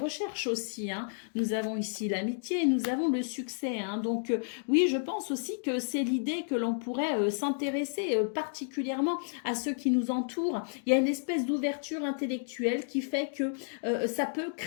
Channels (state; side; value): silent; right; digital silence